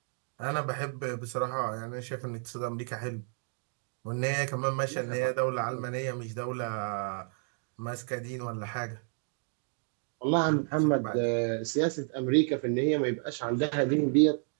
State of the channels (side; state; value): left; silent; 57 dB below the other